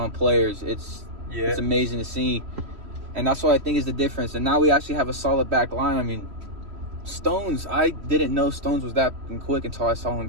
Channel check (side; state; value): left; late; 3.1 ms